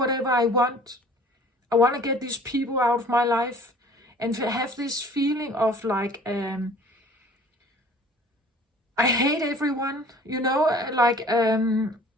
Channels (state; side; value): normal; both; correlation 0.49